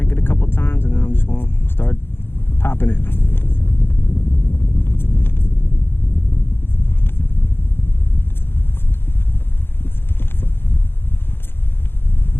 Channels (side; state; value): right; late; 0.11 ms